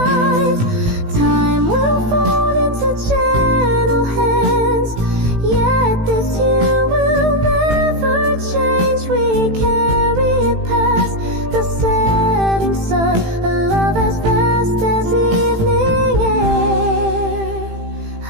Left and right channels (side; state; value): left; late; 18 ms